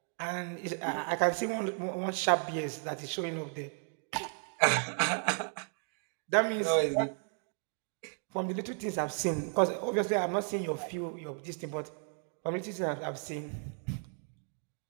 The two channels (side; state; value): left; silent; 55 dB below the other